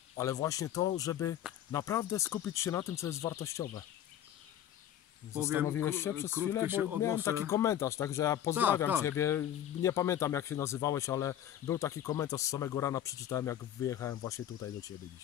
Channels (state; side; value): quieter; right; 11.2 dB